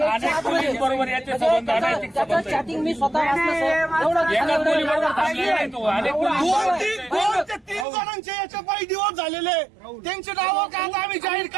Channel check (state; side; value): drops out; left; at 7.9 s